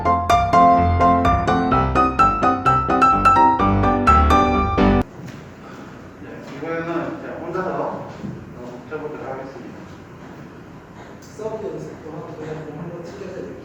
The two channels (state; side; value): identical; both; correlation 1.00